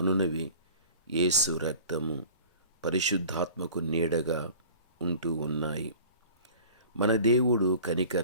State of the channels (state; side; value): inverted; both; correlation -0.45